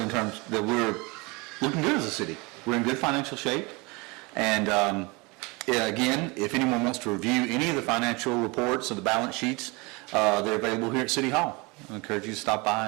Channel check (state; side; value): quieter; left; 26.7 dB